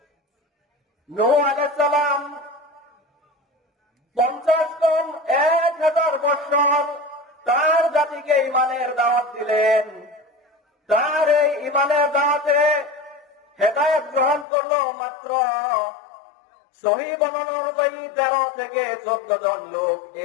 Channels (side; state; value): right; drops out; at 14.5 s